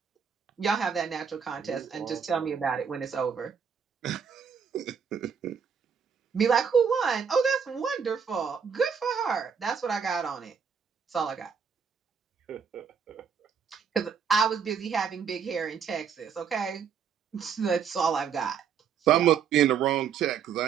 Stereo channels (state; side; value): quieter; left; 6.9 dB